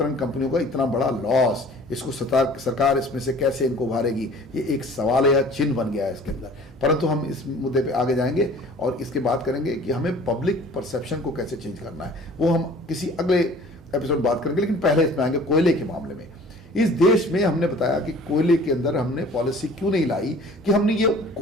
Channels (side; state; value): both; normal; correlation 0.48